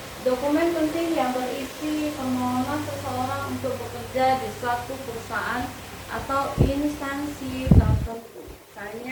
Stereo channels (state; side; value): identical; both; correlation 1.00